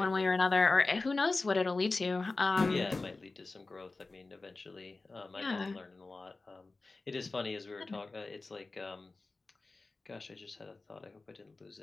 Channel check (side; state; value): right; quieter; 3.5 dB